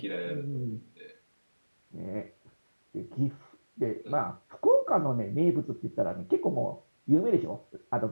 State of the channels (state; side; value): inverted; both; correlation -1.00